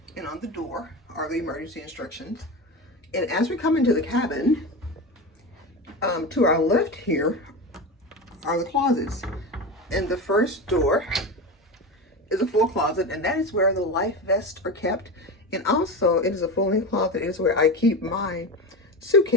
And on the door are the emergency instructions. And as we come into the cabin, to our left here are the closets. And the first door is a full closet, and that is where the life vests are kept. And also, it is a full-length closet. It is where I keep my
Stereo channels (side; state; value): both; normal; correlation 0.23